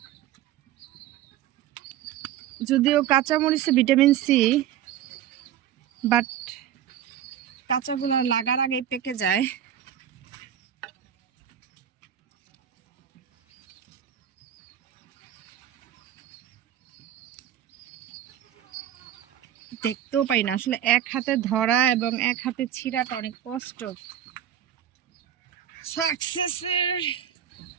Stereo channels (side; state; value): left; quieter; 10.7 dB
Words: যদিও কাঁচা মরিচে ভিটামিন সি, বাট কাঁচাগুলো লাগার আগে পেকে যায়। দেখতেও পাই না আসলে, এক হাতে ধরা এবং এক হাতে ছিঁড়াটা অনেক কষ্ট। সাকসেসের